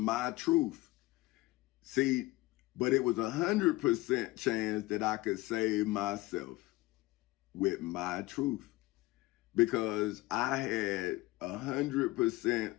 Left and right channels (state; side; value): quieter; right; 19.8 dB